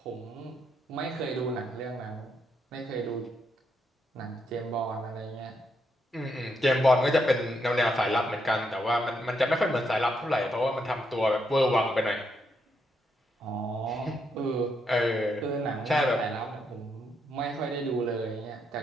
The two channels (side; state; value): both; normal; correlation 0.78